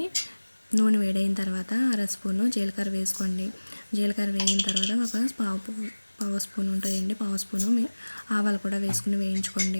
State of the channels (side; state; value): both; inverted; correlation -1.00